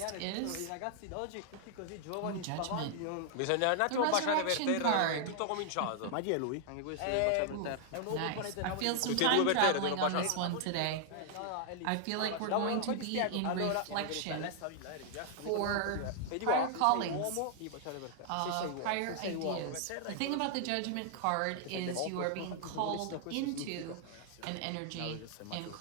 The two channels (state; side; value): different; both; correlation 0.00